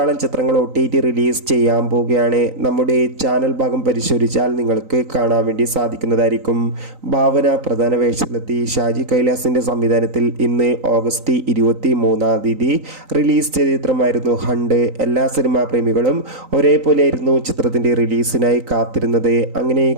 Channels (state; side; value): late; left; 3.9 ms